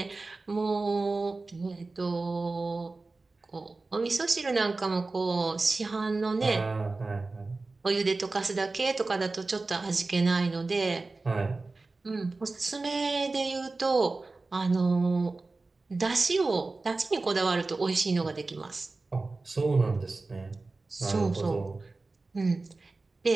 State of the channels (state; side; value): quieter; left; 3.5 dB